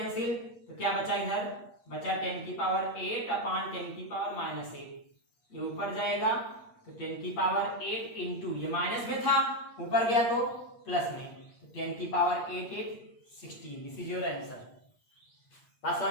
तो क्या बचा इधर बचा 10 की पावर 8 अपान 10 की पावर माइनस 8, ये ऊपर जाएगा, तो 10 की पावर 8 इंटू, ये माइनस में था ऊपर गया तो प्लस में, तो 10 की power 8 8 16, this is your answer. बात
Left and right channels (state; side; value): late; right; 8.4 ms